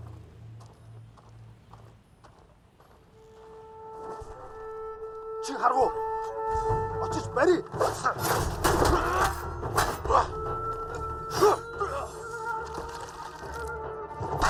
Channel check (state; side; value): identical; both; correlation 1.00